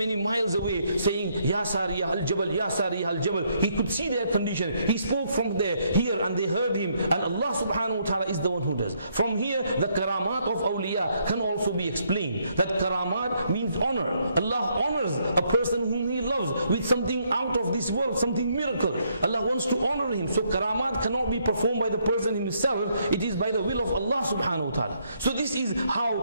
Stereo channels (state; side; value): inverted; both; correlation -0.72